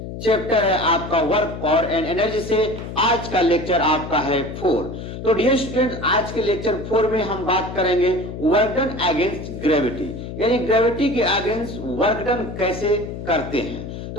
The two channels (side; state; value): left; noise; hum, 9 dB below the sound